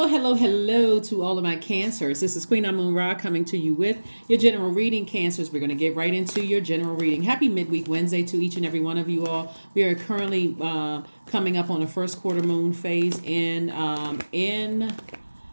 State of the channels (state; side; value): inverted; both; correlation -1.00